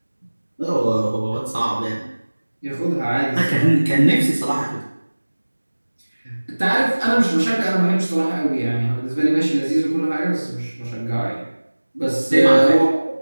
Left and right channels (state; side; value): inverted; both; correlation -1.00